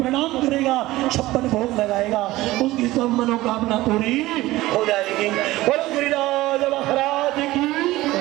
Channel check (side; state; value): left; quieter; 17.7 dB